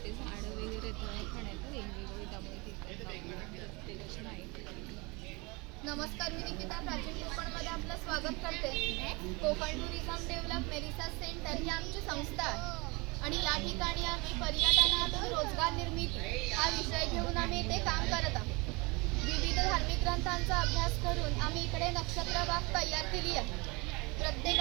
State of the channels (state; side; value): quieter; left; 26.9 dB